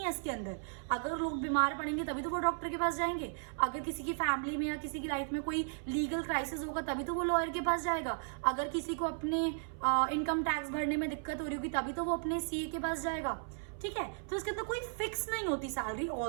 है इसके अंदर। अगर लोग बीमार पड़ेंगे तभी तो वो डॉक्टर के पास जाएंगे, अगर किसी की फैमिली में या किसी की लाइफ में कोई लीगल क्राइसिस होगा तभी तो वो लॉयर के पास जाएगा, अगर किसी को अपने इनकम टैक्स भरने में दिक्कत हो रही होगी तभी तो वो अपने सीए के पास जाएगा। ठीक है, तो इसके अंदर कोई फिक्स नहीं होती सैलरी,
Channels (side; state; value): left; silent; 54 dB below the other